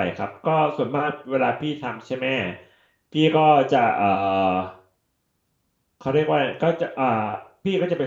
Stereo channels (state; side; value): identical; both; correlation 1.00